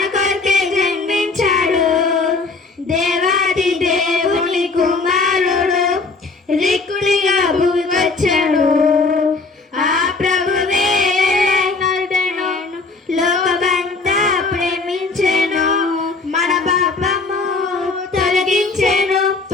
కొరకే జన్మించాడు. దేవాది దేవుని కుమారుడు రిక్కుడిగా వచ్చాడు. ఆ ప్రభువే లోకమంతా ప్రేమించెను, మన పాపము తొలగించెను,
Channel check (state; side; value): quieter; right; 3.9 dB